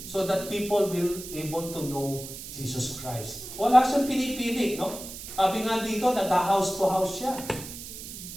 so that people will able to know Jesus Christ. Wala siyang pinipili, no? Sabi nga dito, nag-house to house siya.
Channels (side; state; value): right; noise; hiss, 11 dB below the sound